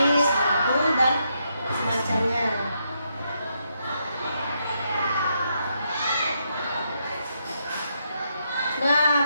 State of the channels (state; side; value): inverted; both; correlation -0.79